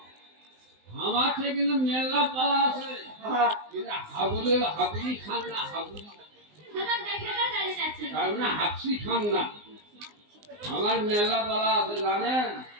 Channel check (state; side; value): late; left; 19 ms